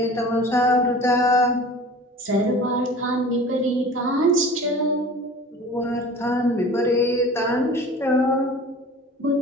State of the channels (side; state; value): both; normal; correlation 0.41